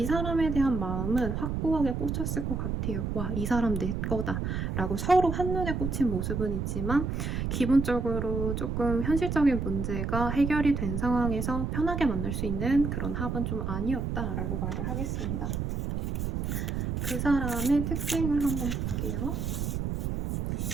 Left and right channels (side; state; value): right; noise; rumble, 2 dB below the sound